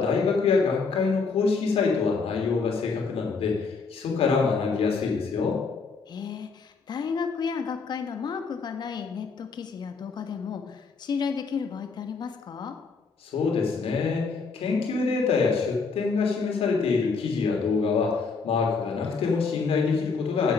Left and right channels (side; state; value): right; quieter; 4.7 dB